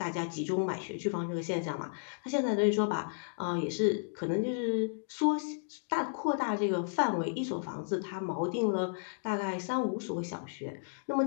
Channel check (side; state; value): right; silent; digital silence